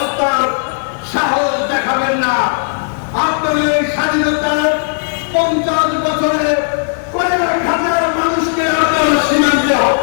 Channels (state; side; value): silent; right; digital silence